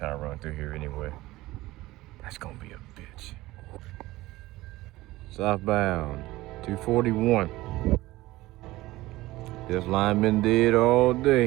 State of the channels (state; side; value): quieter; left; 18.3 dB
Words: run through here anyway. That's gonna be a bitch. Southbound 241. This line been dead all